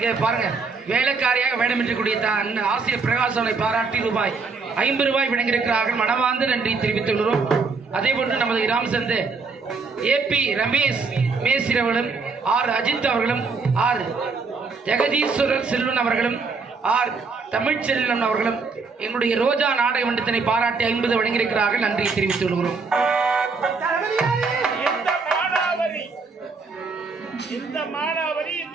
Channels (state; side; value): quieter; left; 4.5 dB